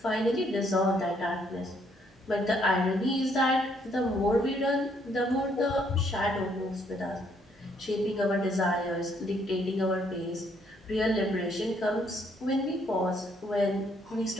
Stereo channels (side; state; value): both; normal; correlation 0.69